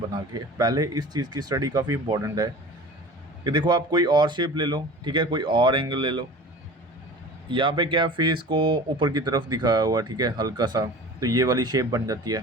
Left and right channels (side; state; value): both; normal; correlation 0.39